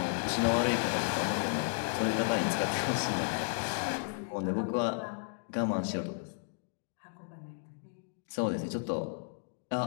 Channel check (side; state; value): right; silent; digital silence